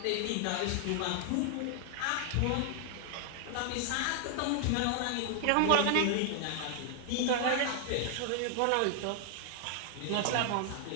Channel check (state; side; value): different; both; correlation 0.00